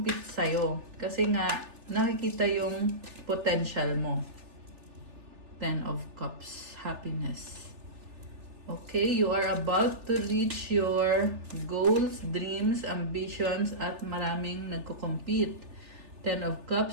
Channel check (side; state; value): left; late; 3.4 ms